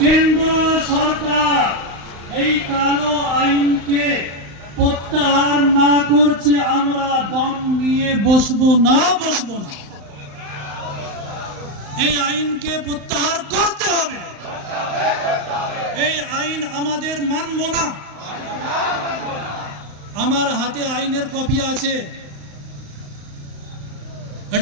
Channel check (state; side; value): late; left; 35 ms